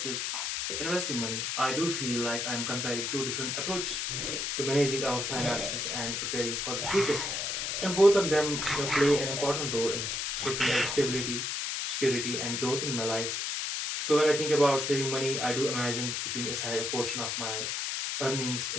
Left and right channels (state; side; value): noise; left; hiss, 2 dB below the sound